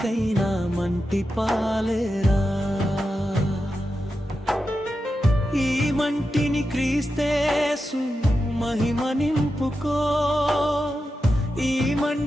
మంటి పాలేరా. ఈ మంటిని క్రీస్తేసు మహిమ నింపుకో, ఈ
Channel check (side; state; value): both; normal; correlation 0.90